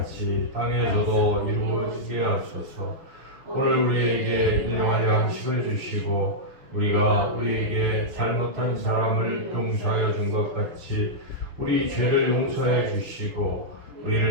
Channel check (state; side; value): late; left; 6.5 ms